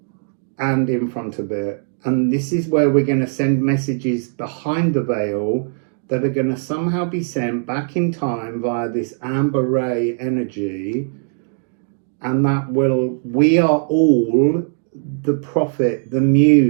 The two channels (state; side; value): silent; left; digital silence